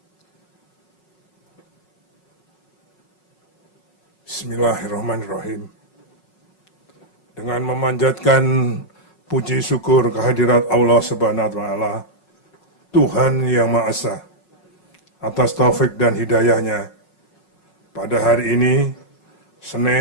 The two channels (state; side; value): late; right; 5.4 ms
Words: Bismillahirrahmanirrahim. Dengan memanjatkan puji syukur kehadirat Allah Subhanahu wa Ta'ala, Tuhan Yang Maha Esa, atas taufik dan hidayahnya, pada hari ini,